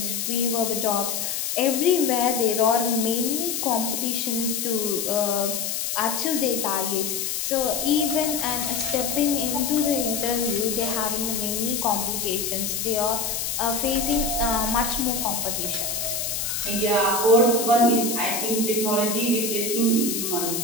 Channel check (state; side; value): noise; left; hiss, 2 dB below the sound